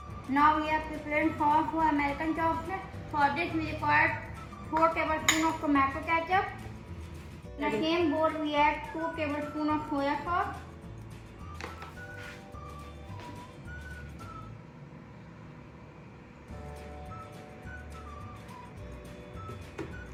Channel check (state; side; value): identical; both; correlation 1.00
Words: Now we are preparing sauce for American chopstick. For this we require 4 tablespoons of tomato ketchup. In the same bowl we add 2 tablespoons of soya sauce.